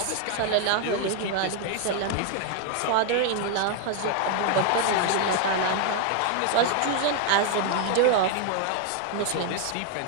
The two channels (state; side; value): different; both; correlation 0.00